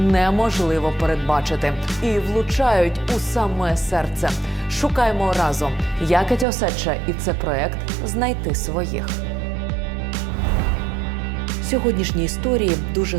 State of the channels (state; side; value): drops out; left; at 6.5 s